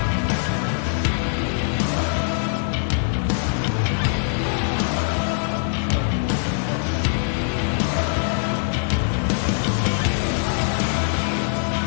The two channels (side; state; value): right; silent; digital silence